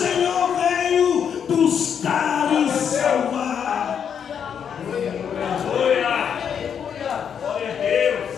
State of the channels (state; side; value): quieter; right; 7.8 dB